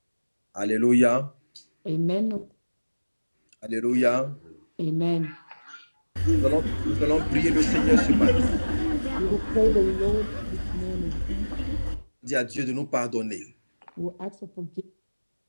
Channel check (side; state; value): both; inverted; correlation -1.00